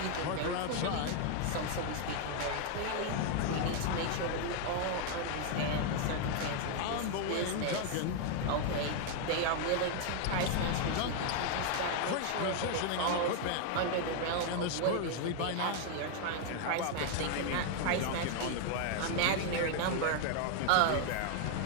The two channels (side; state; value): both; different; correlation 0.00